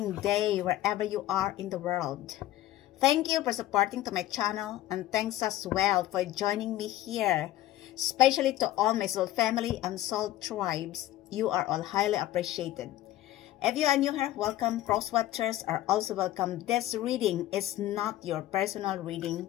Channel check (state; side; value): quieter; right; 14.6 dB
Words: day wherever you are in the world. Thank you for supporting to my channel and thanks as well for joining me here. Especially to all my soul family and soul tribes. You are all highly appreciated. If you are new here, welcome. Cross watchers are also welcome. This reading is not your personal reading.